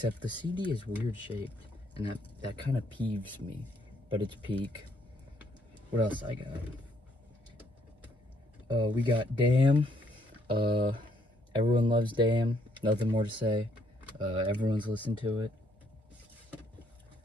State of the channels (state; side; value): normal; both; correlation 0.69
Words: the CD is weird shaped, and that kind of peeves me. But it's peak. What else I got? We got Damn. Everyone loves Damn. Nothing more to say. Everyone's listened to it.